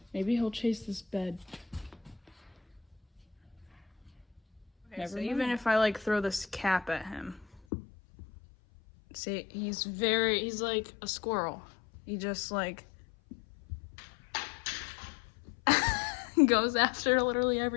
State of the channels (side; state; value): right; drops out; at 7.6 s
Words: Maybe he'll chase this bed. Okay, so even if I throw this cap at him, see, he's like a squirrel. He just goes after literally